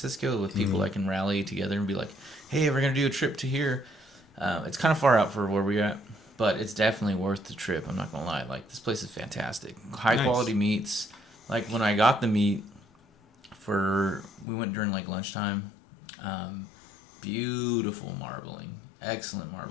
with people that can rally together and be like, hey, we're going to do a trip to here. It's kind of far out for where we're at, but it's definitely worth the trip. I'm not going to lie. Like, this place is fantastic. High quality meats. Like, when I got the meat we went during like lunchtime. Beautiful marbling. Excellent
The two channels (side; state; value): right; drops out; at 14.5 s